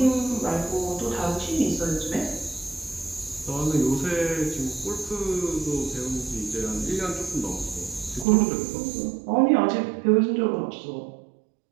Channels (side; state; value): left; drops out; at 8.2 s